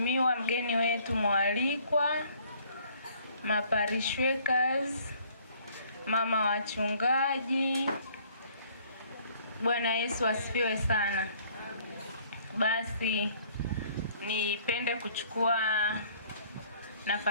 mgeni wetu mwalikwa, maparishwekers, mama wachungaji, Bwana Yesu asifiwe sana. Basi nipende kuchukua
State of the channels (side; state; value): both; inverted; correlation -0.59